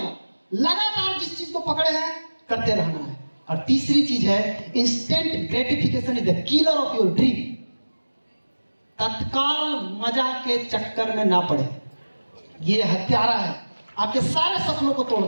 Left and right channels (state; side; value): inverted; both; correlation -1.00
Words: लगातार जिस चीज को पकड़े हैं करते रहना है। और तीसरी चीज है instant gratification is the killer of your dream. तत्काल मजा के चक्कर में ना पड़े। ये हत्यारा है, आपके सारे सपनों को तोड़